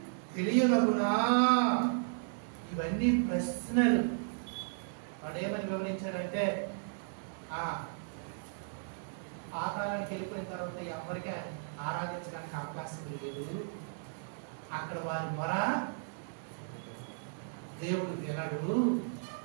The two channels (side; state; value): left; silent; digital silence